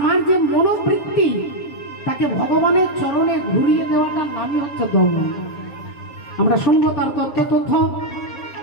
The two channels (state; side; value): late; right; 7.2 ms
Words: যে মনোবৃত্তি তাকে ভগবানের চরণে ঘুরিয়ে দেওয়াটার নামই হচ্ছে দমন। আমরা শুনবো তার তথ্য।